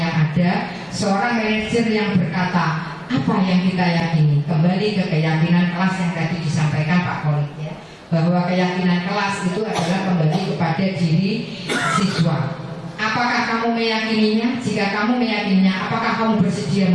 ada. Seorang manajer yang berkata, apa yang kita yakini? Kembali ke keyakinan kelas yang tadi disampaikan Pak Kolik ya, bahwa keyakinan kelas itu adalah kembali kepada diri siswa. Apakah kamu meyakininya? Jika kamu meyakininya, apakah kamu bersedia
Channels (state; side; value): identical; both; correlation 1.00